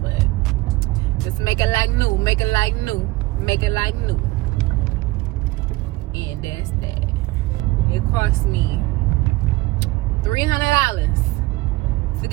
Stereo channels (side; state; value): left; quieter; 20.0 dB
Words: but just make it like new, and that's that. It cost me $300 to